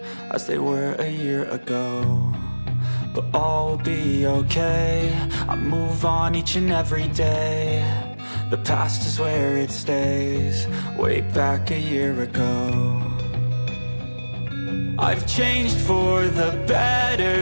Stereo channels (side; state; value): both; inverted; correlation -1.00